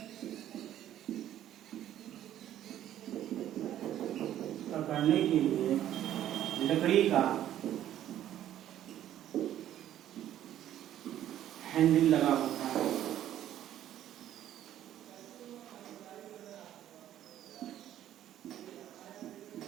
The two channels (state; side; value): quieter; left; 11.8 dB